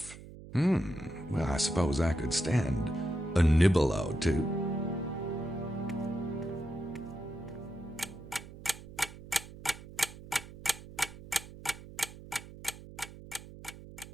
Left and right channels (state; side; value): noise; right; hum, 15 dB below the sound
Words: Well, I suppose I could stand a nibble or two.